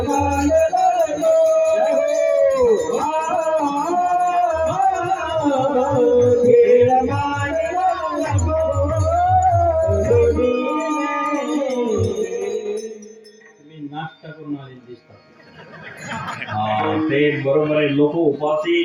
नाश्ता करून आले दिसतात ते बरोबर आहे लोक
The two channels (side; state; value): both; identical; correlation 1.00